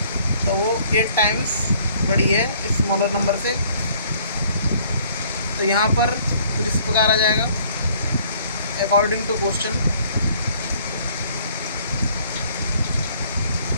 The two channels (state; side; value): inverted; both; correlation -0.60